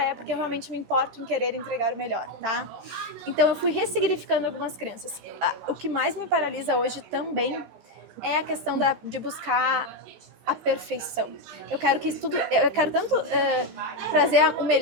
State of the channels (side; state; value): left; late; 15 ms